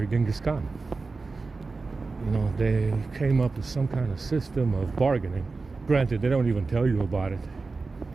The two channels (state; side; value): quieter; left; 4.0 dB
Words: Genghis Khan. You know, they came up with some kind of system of bargaining. Granted, they don't even tell you about it.